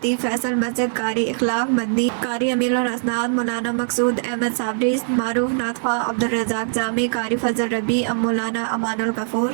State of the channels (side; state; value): left; silent; 65 dB below the other